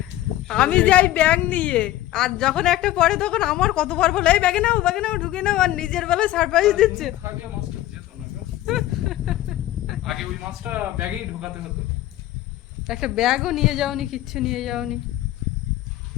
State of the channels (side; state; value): right; quieter; 14.8 dB